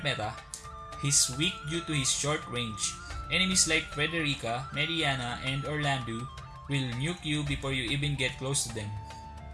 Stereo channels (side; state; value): both; identical; correlation 1.00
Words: meta, he's weak due to his short range. Enemies like Frederica, Mediana, and Orlando will nuke you before you even get close to them.